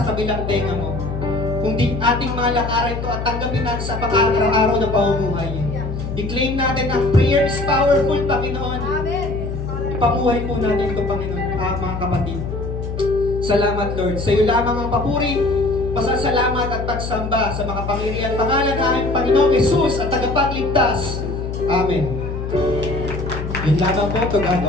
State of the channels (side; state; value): left; noise; hum, 5 dB below the sound